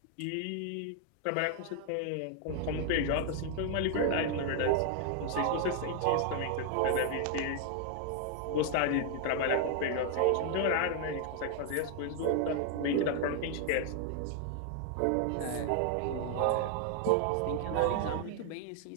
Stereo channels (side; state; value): both; different; correlation 0.00